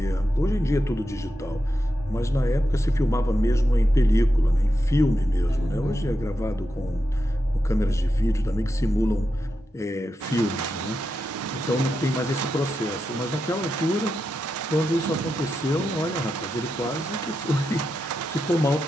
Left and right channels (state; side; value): normal; both; correlation 0.88